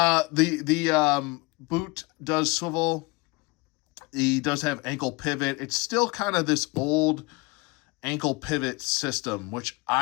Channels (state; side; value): quieter; right; 25.5 dB